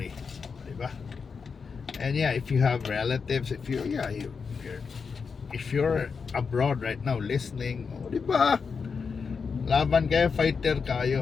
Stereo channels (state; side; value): quieter; right; 5.5 dB